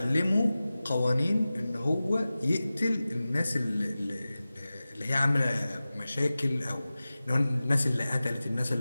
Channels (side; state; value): both; inverted; correlation -0.96